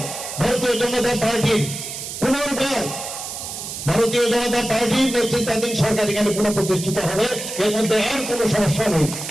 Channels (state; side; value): noise; right; hiss, 8 dB below the sound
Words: ভারতীয় জনতা পার্টির পুনর্বার ভারতীয় জনতা পার্টির নেতৃত্বাধীন সরকার এখানে পুনঃপ্রতিষ্ঠিত হবে। এর মধ্যে আর কোন সমস্যা নেই।